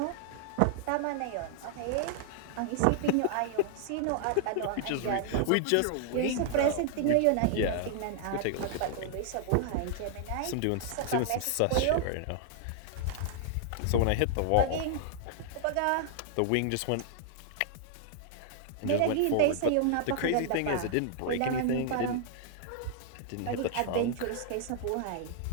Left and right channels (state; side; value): different; both; correlation -0.01